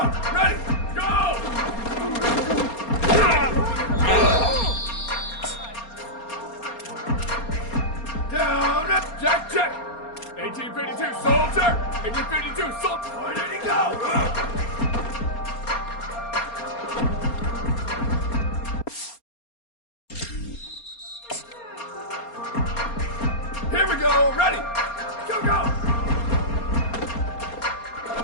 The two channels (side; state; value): right; late; 4.3 ms